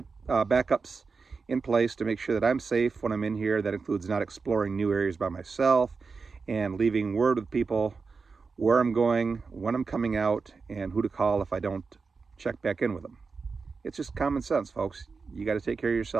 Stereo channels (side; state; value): left; quieter; 4.7 dB